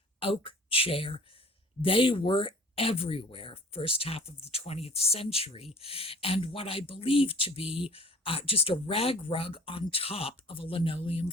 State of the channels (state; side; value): normal; both; correlation 0.47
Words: oak chair. They were everywhere first half of the 20th century, and what I believe to be just a rag rug on top of a linoleum